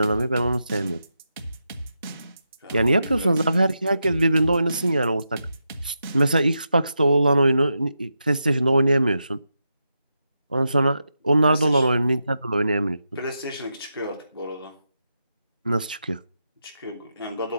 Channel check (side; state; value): both; inverted; correlation -0.87